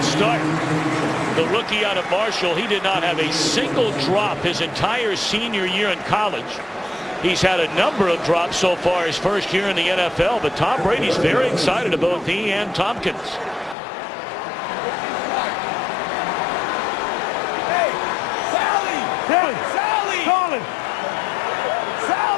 start. The rookie out of Marshall, he did not have a single drop his entire senior year in college. He's had a number of drops so far his first year in the NFL, but Tom Brady's very excited about he and Tompkins. Hey, Sally. Sally. Sally. Solid.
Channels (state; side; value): drops out; right; at 13.8 s